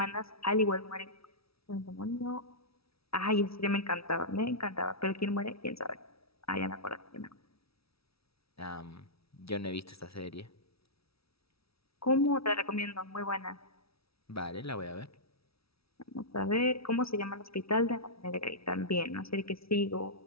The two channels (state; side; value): late; right; 0.76 ms